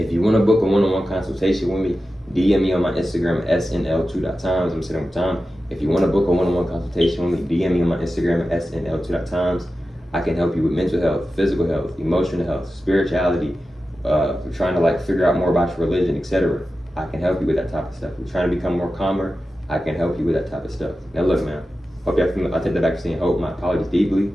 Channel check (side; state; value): both; normal; correlation 0.93